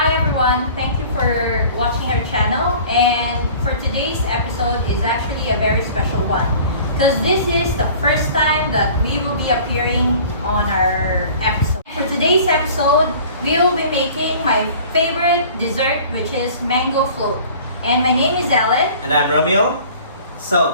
everyone, thank you for watching our channel, and for today's episode is actually a very special one because this is the first time that we will be appearing on our episode. For today's episode, we will be making my favorite dessert, which is mango float. And my name is Ellen. And I'm Romeo.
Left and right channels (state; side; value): inverted; both; correlation -0.46